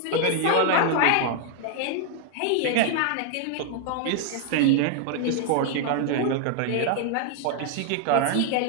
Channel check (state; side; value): different; both; correlation 0.00